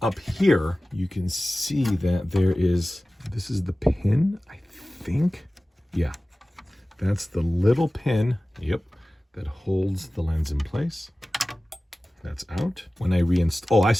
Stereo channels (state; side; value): normal; both; correlation 0.97